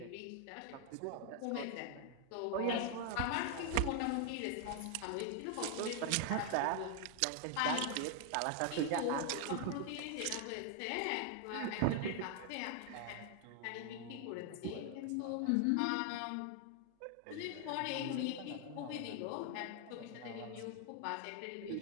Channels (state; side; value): different; both; correlation 0.00